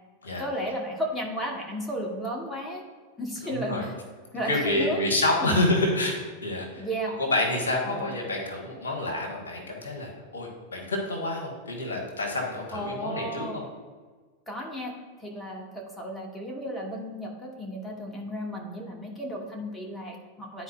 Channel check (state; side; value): normal; both; correlation -0.17